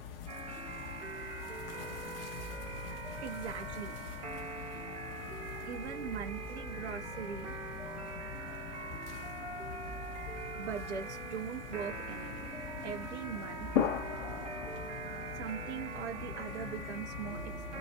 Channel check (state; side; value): normal; both; correlation 0.07